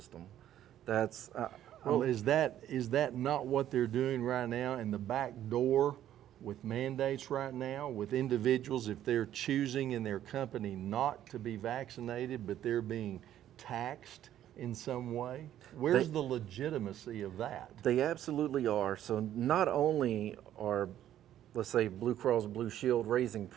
That's Well, is that not what they're doing right now in the back door with mandates right now with individuals, if they're choosing in their company not to be vaccinated, but they're being taxed in some way? Where's the legitimacy of that? They absolutely are. So not only are, let's say, Blue Cross Blue Shield raising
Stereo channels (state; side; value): quieter; left; 11.7 dB